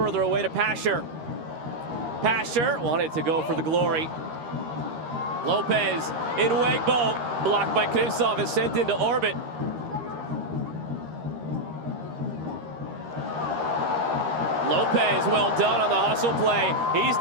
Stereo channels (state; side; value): late; left; 13 ms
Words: away to Pasher. Pasher wanted to go for the glory. Lopez in Wegbo, blocked by Krivtsov and sent into orbit. Lopez, well done on the hustle play. He's